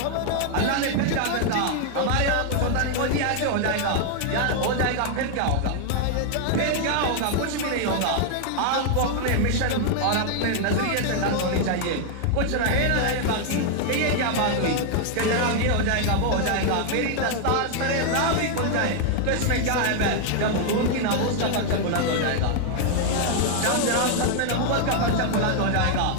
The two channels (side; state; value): both; different; correlation 0.00